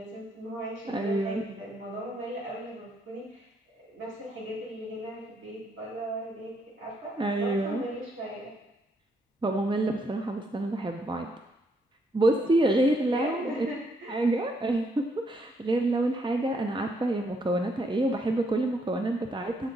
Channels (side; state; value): both; normal; correlation 0.74